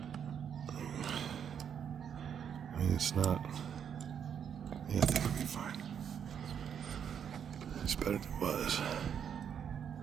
I mean, it's not... Yeah, I think it'll be fine. It's better than it was.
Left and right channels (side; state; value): left; quieter; 8.1 dB